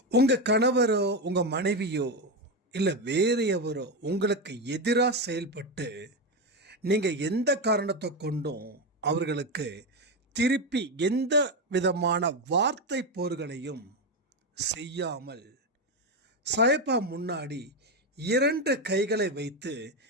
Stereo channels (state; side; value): normal; both; correlation 0.12